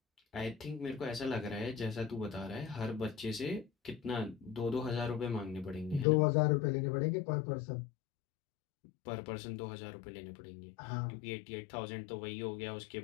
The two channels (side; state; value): right; drops out; at 6.1 s